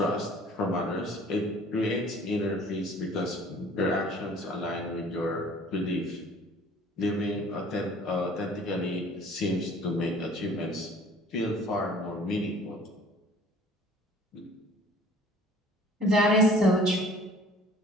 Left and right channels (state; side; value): normal; both; correlation 0.51